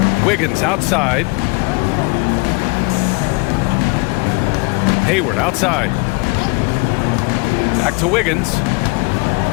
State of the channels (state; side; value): quieter; right; 28.0 dB